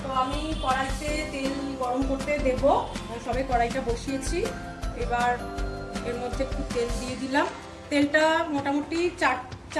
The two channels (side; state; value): both; identical; correlation 1.00